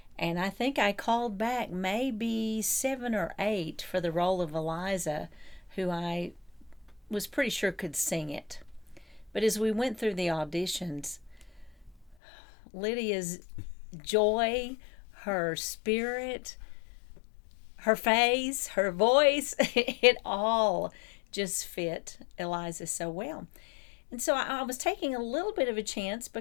And I think I called back maybe 7 or 8 for the role of Eliza, who I was pretty sure could sing it. But as we went through the auditions, Lydia's joy, her spirit, her face, her voice, it all just fit Eliza so well. And so I was taking a little bit of a chance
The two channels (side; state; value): right; drops out; at 12.2 s